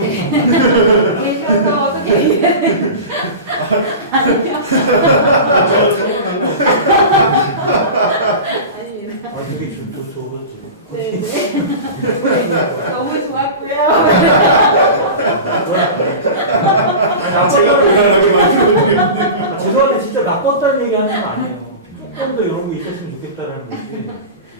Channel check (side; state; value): both; inverted; correlation -0.31